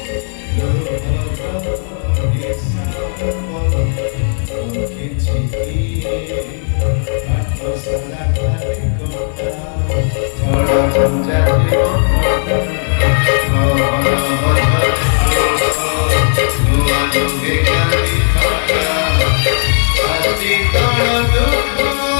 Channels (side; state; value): right; silent; digital silence